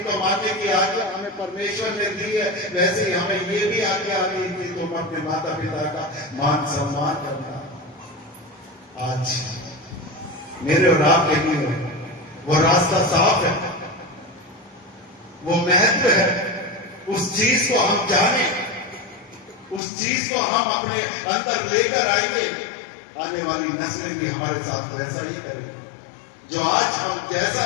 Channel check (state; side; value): drops out; right; at 19.8 s